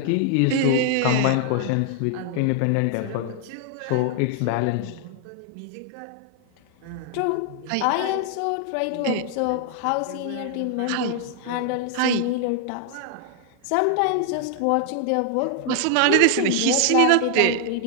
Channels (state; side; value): different; both; correlation 0.00